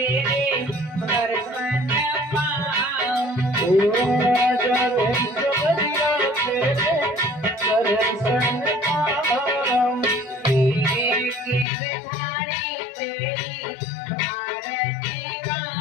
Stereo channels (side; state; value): right; drops out; at 11.7 s